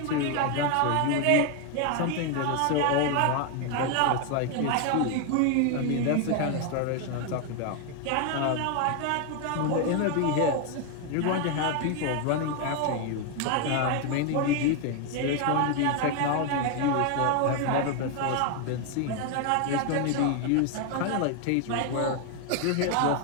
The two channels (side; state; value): both; different; correlation 0.01